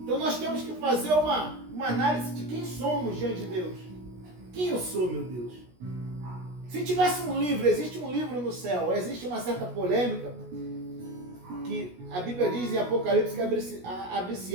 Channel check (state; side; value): late; left; 16 ms